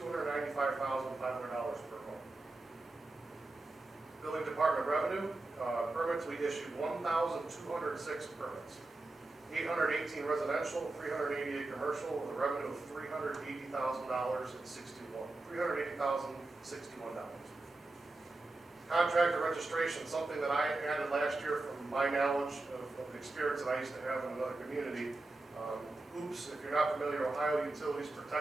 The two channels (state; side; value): quieter; left; 3.0 dB